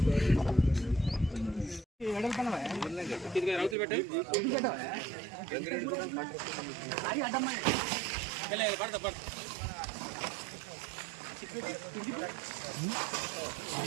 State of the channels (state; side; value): drops out; left; at 3.8 s